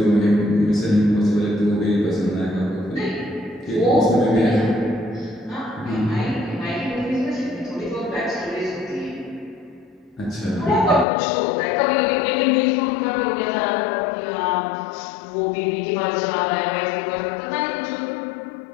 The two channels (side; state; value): right; drops out; at 11.1 s